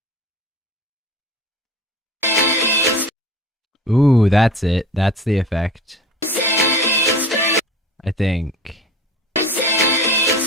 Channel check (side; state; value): both; normal; correlation 0.38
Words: Ooh, that's it. That's the effect. I think.